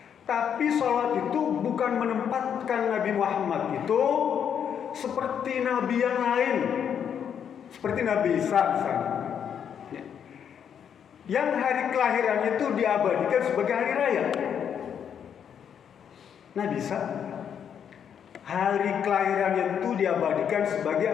Tapi solat itu bukan menempatkan Nabi Muhammad itu seperti nabi yang lain. Seperti Nabi Isa misalnya, ya, yang hari kelahirannya itu diabadikan sebagai hari raya. Nabi Isa hari kelahirannya itu diabadikan sebagai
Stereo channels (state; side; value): quieter; right; 8.2 dB